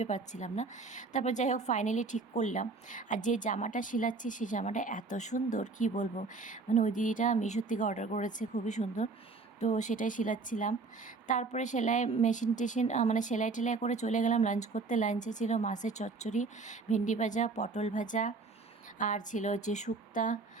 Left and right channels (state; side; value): quieter; left; 4.1 dB